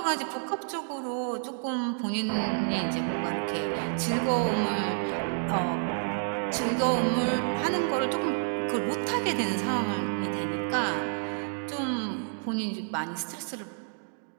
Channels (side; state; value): left; silent; digital silence